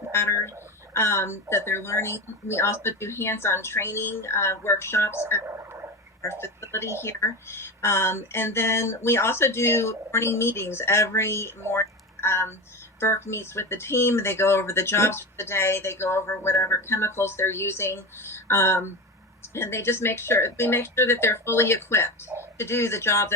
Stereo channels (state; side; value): normal; both; correlation 0.24